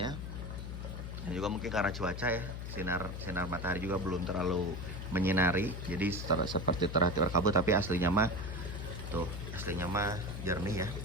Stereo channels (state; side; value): noise; left; hum, 6 dB below the sound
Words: Dan juga mungkin karena cuaca ya, sinar matahari juga belum terlalu menyinari. Jadi seperti terlihat berkabut, tapi aslinya mah tuh, aslinya mah jernih ya.